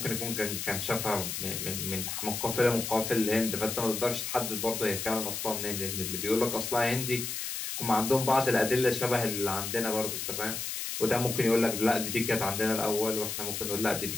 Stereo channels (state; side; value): noise; left; hiss, 4 dB below the sound